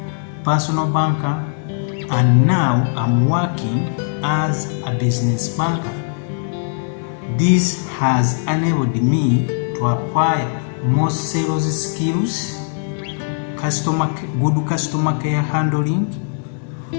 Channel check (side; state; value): right; silent; digital silence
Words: personal banker, and now I'm working as a business banker. This has enabled me to acquire more sales skills, good customer care handling,